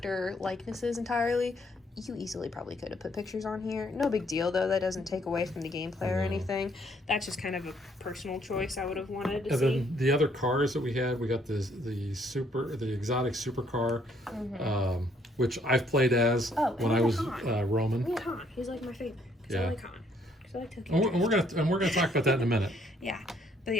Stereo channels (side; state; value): both; normal; correlation 0.67